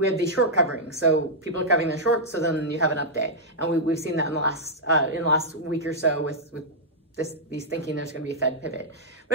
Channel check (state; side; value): normal; both; correlation -0.07